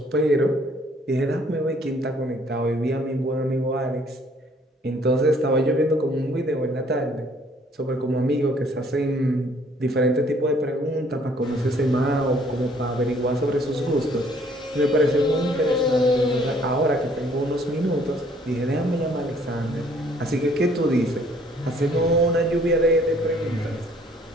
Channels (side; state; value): both; normal; correlation 0.61